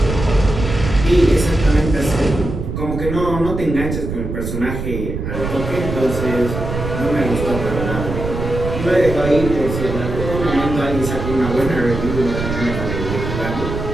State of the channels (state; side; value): noise; right; rumble, 5 dB below the sound